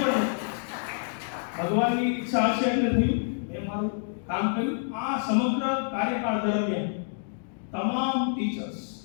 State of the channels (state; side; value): silent; right; digital silence